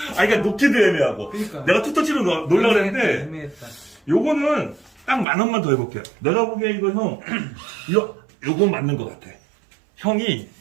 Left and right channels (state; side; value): drops out; left; at 5.2 s